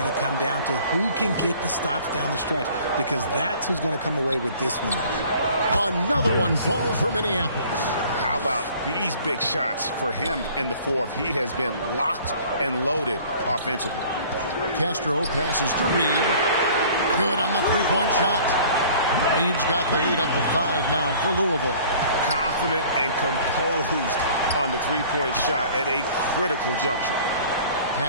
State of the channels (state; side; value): inverted; both; correlation -0.50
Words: to come down to who can get the stops down the stretch, because that's who's going to come away with this one. Another one falls for Minneapolis. How about these big shots for him in the fourth? He has been locked and loaded offensively. Castro passes to Reed. Good on the three-point shot. Reed's got the lead up to 5 now for Louisville. Confident and composed on the three-point shot at a critical juncture.